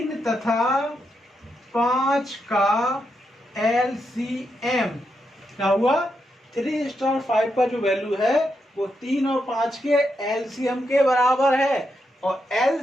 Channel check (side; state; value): both; normal; correlation 0.83